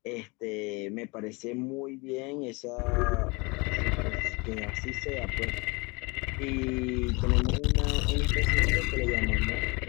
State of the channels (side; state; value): right; quieter; 27.2 dB